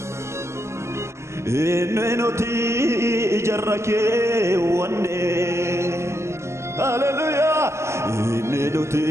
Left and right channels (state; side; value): late; left; 0.13 ms